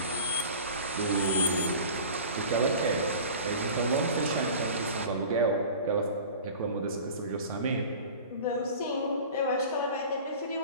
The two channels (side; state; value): both; inverted; correlation -0.39